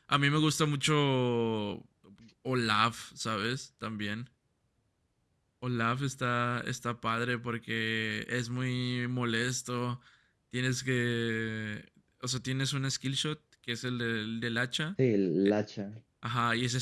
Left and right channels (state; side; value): identical; both; correlation 1.00